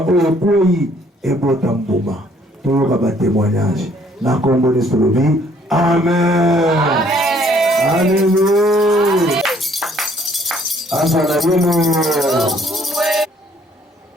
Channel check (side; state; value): both; normal; correlation 0.63